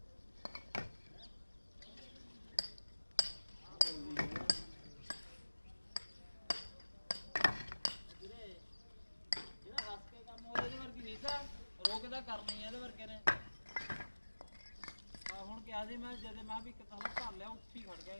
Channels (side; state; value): both; inverted; correlation -1.00